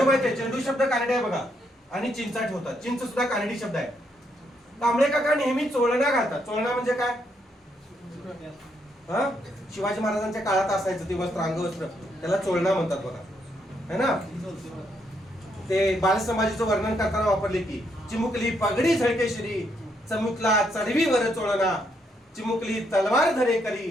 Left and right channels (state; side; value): normal; both; correlation 0.76